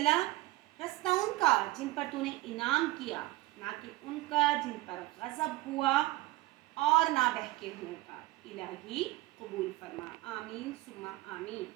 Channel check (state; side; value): quieter; left; 19.1 dB